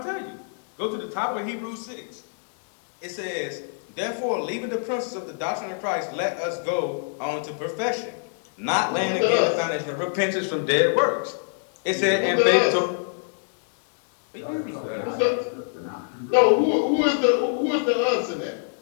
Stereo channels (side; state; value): right; silent; digital silence